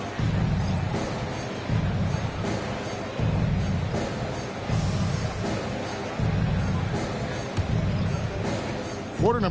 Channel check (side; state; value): both; identical; correlation 1.00